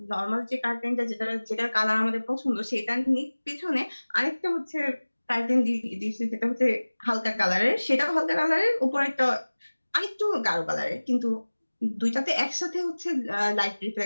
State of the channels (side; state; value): both; inverted; correlation -1.00